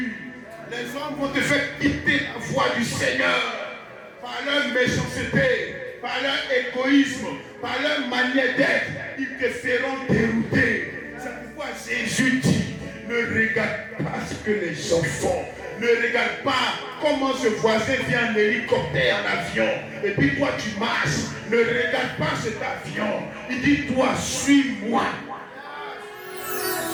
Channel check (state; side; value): identical; both; correlation 1.00